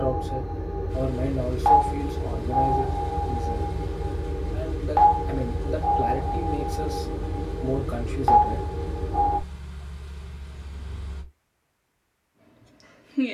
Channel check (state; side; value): identical; both; correlation 1.00